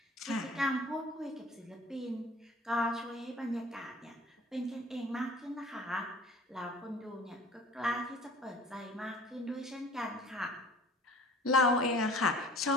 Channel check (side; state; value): both; normal; correlation 0.47